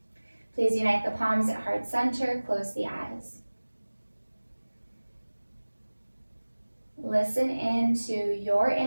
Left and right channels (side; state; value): both; inverted; correlation -1.00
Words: Please unite the palms at heart center, close the eyes. Listen into your